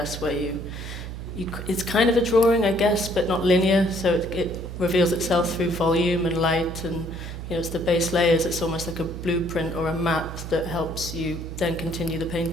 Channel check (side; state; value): right; noise; hum, 8 dB below the sound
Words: where it's kind of a drawing, I guess, but not linear, so it reveals itself through volume and light, and it's the base layers. It's almost like a blueprint or a map that helps you then continue the